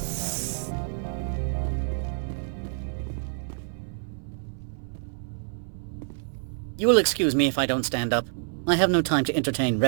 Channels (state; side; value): silent; left; 59 dB below the other